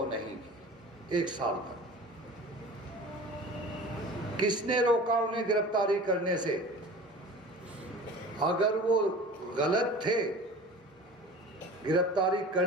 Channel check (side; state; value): both; normal; correlation 0.39